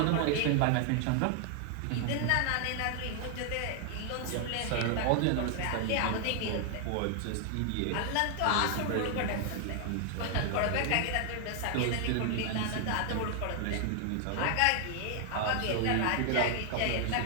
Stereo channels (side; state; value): both; different; correlation 0.00